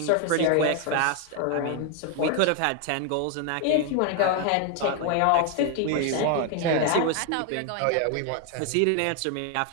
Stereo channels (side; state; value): both; different; correlation 0.01